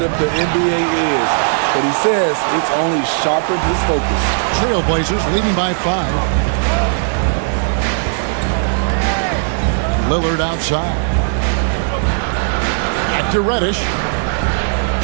the NBA is. But he says it's only sharpened his focus. Trailblazers leading by 5. Lillard outside. Back to Reddish.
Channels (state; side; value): silent; left; 67 dB below the other